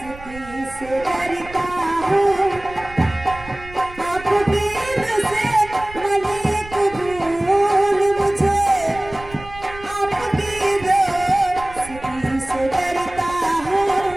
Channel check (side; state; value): right; noise; rumble, 17 dB below the sound